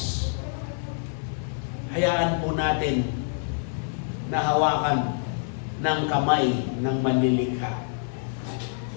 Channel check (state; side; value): silent; right; digital silence